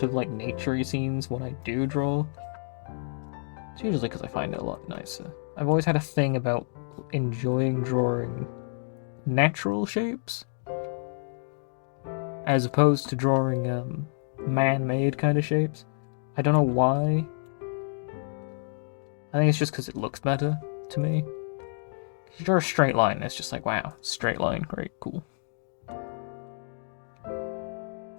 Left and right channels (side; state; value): right; silent; digital silence